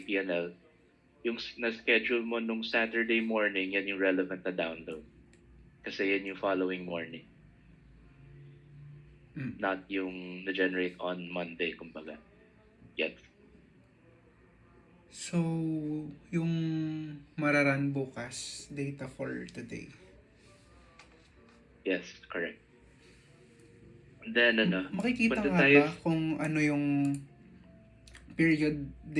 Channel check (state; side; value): identical; both; correlation 1.00